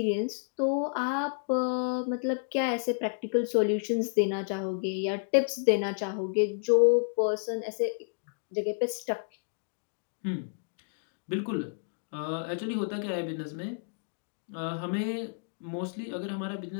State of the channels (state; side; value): silent; right; digital silence